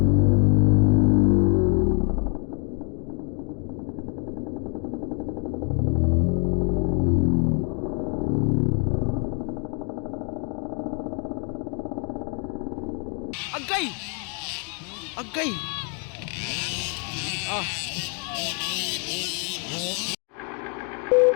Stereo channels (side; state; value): right; quieter; 39.8 dB